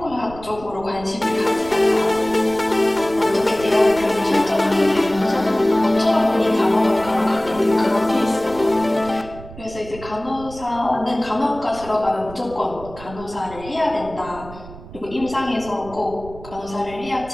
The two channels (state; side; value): noise; right; rumble, 16 dB below the sound